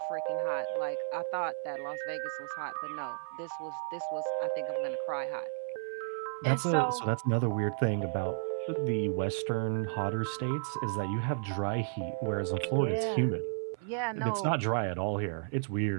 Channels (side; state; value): left; silent; 56 dB below the other